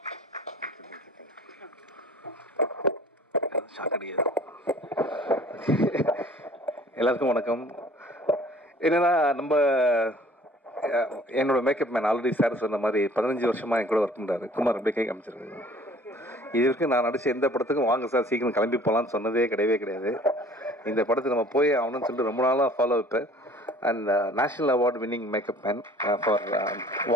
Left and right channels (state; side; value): normal; both; correlation 0.51